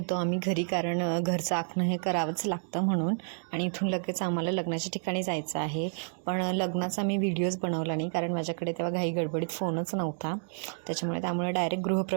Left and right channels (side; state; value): left; silent; digital silence